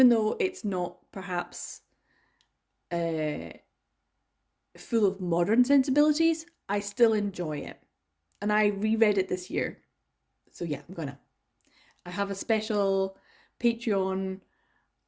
though it's not perhaps full of modern sensibilities, I still enjoy it. And I reread it this year. So yeah, I have a special Patreon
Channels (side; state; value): both; identical; correlation 1.00